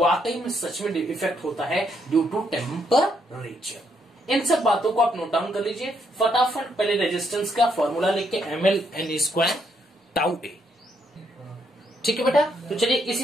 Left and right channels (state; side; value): normal; both; correlation 0.75